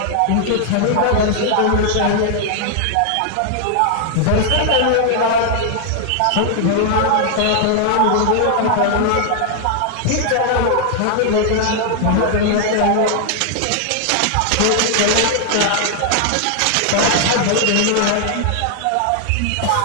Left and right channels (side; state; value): both; different; correlation 0.00